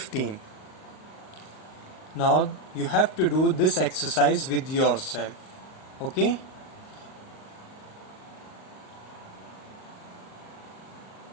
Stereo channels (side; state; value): right; late; 38 ms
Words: Now you have to do this exercise with yourself. Okay?